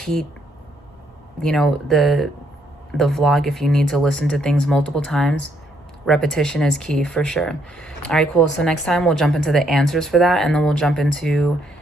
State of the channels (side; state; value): both; normal; correlation 0.72